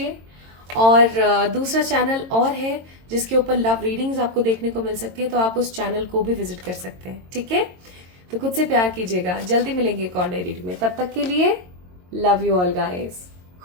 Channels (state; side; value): late; left; 22 ms